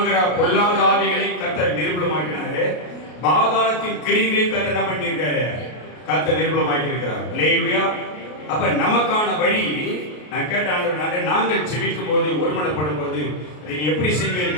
பொல்லாத ஆவிகளை கர்த்தர் நிர்மூலமாக்கினாரு. பாதாளத்தின் கிரியைகளை கர்த்தர் என்ன பண்ணியிருக்காரு? கர்த்தர் நிர்மூலமாக்கி இருக்கிறார். அல்லேலூயா. அப்ப நமக்கான வழி நான் கேட்டாங்க. நாங்கள் ஜெபிக்கும் போது, ஒருமனப்படும் போது அதை எப்படி செய்வீர்கள்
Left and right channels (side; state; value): right; late; 33 ms